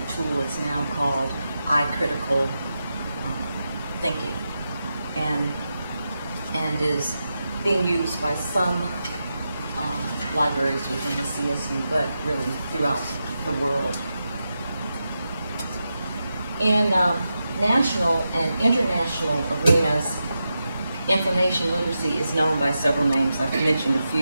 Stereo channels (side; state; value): both; inverted; correlation -0.88